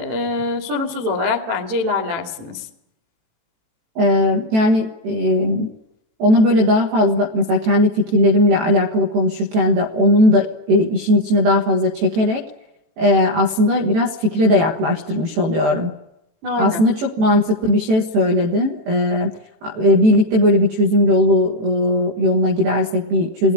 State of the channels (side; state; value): left; late; 18 ms